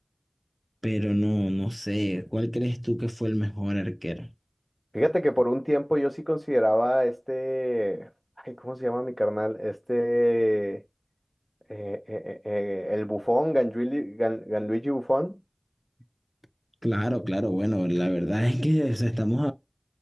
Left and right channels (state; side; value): identical; both; correlation 1.00